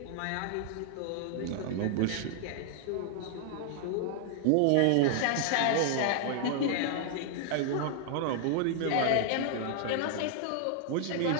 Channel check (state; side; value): different; both; correlation -0.01